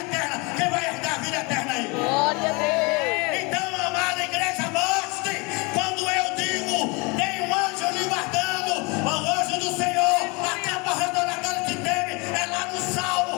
Quem vai herdar a vida eterna aí? Glória a Deus. Então, amada igreja, mostre quando eu digo: tem um anjo lhe guardando, o anjo do Senhor acampa ao redor daquele que teme. É lá no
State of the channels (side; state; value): right; quieter; 28.2 dB